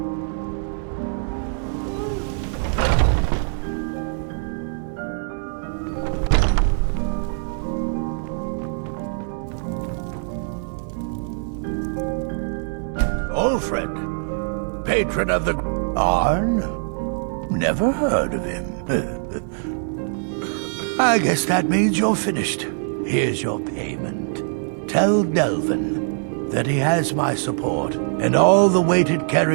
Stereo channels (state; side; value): silent; left; 64 dB below the other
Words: Alfred, patron of the Arn? Never heard of him. I guess that means you're finished. Here's your payment. Tell Delvin that he has my support and all the weight it